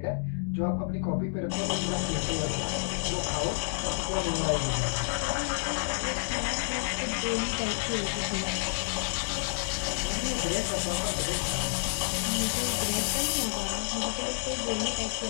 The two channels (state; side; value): silent; right; digital silence